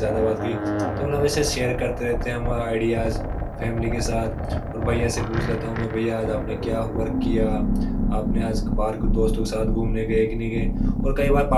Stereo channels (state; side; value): identical; both; correlation 1.00